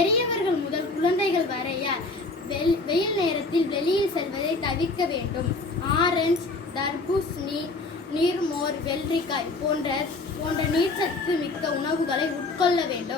முதல் குழந்தைகள் வரைய வெயில் நேரத்தில் வெளியில் செல்வதை தவிர்க்க வேண்டும். ஆரஞ்சு, தர்பூசணி, நீர்மோர், வெள்ளரிக்காய் போன்ற நீர்ச்சத்து மிக்க உணவுகளை உட்கொள்ள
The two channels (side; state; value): right; quieter; 3.4 dB